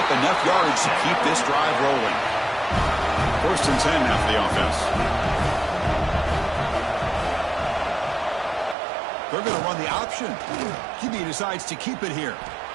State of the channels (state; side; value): drops out; left; at 8.8 s